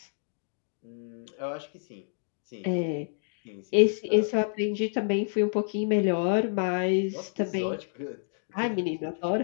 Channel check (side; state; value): right; silent; digital silence